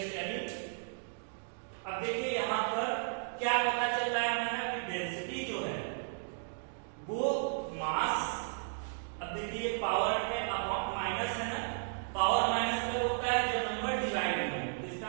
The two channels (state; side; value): silent; left; digital silence